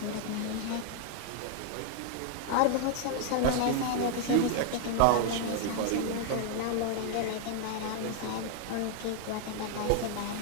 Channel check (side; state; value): both; different; correlation 0.00